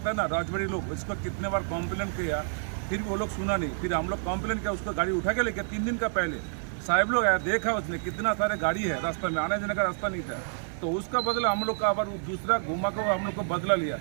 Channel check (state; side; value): silent; left; 59 dB below the other